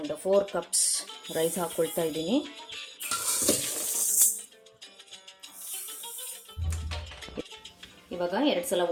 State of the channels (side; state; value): both; identical; correlation 1.00